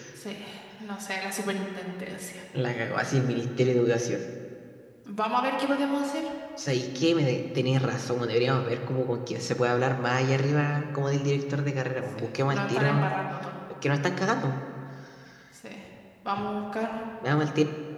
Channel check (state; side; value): identical; both; correlation 1.00